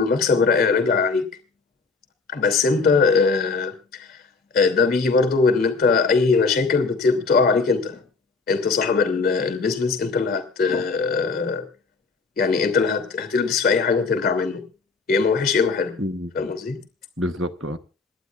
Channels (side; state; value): right; quieter; 4.3 dB